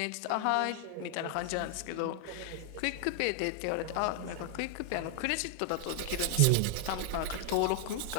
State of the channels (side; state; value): both; different; correlation 0.00